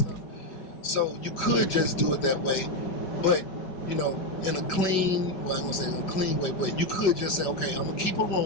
So you could just do it that way, but in a clean, well, I ain't gonna say in a clean way, but you could just say, okay, I'm gonna keep a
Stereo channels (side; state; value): right; late; 5.1 ms